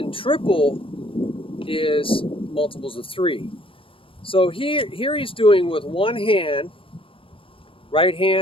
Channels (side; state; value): right; late; 0.26 ms